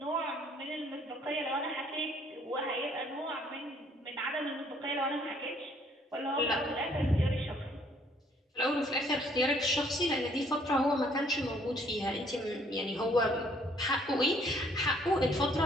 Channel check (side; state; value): both; normal; correlation 0.63